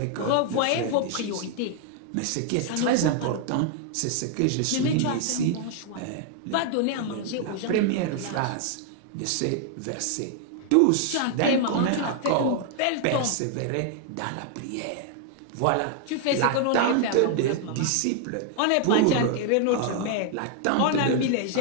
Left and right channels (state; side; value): different; both; correlation 0.00